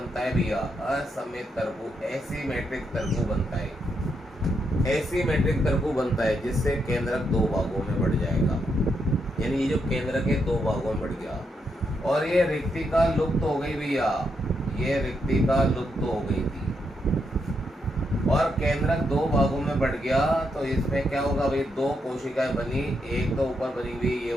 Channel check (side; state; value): both; normal; correlation 0.80